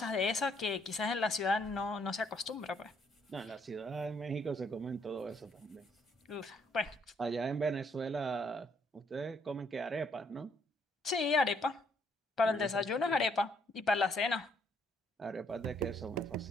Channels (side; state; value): both; normal; correlation 0.69